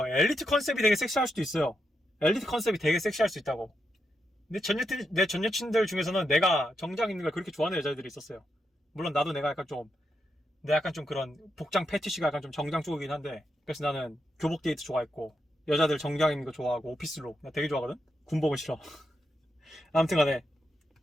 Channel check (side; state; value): both; normal; correlation 0.83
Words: 엘리트 컨셉이 되게 섹시할 수도 있어요. 엘리트 컨셉이 되게 섹시할 수 있다고. 근데 내 전 여친들 중에서는 내가 정장 입는 걸 그렇게 좋아하는 여자들이 있었어요. 물론 나도 내가 약간 좀 그런 복장 패티시가 약간 좀 정장 쪽이긴 한데, 그래서 나는 교복 데이트 좋아했고, 여자들 정장 입는 거 좋아하고, 오피스룩 나 되게 좋아하거든? 군복은 싫어. 아무튼 간에